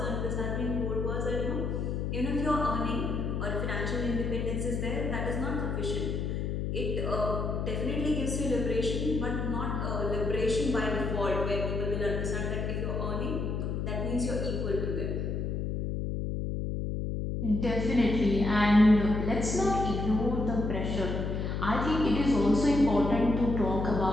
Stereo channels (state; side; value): noise; left; hum, 1 dB below the sound